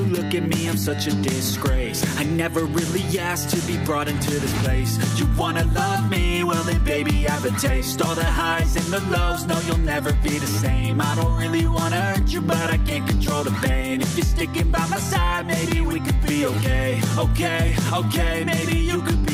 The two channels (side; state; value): both; identical; correlation 1.00